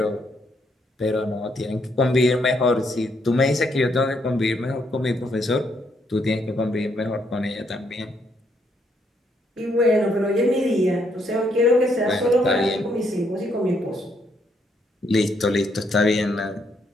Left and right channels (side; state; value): both; normal; correlation 0.73